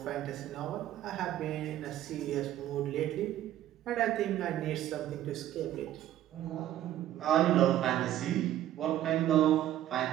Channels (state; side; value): quieter; left; 12.6 dB